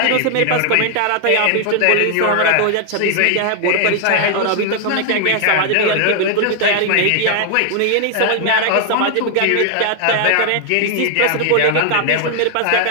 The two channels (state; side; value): different; both; correlation 0.00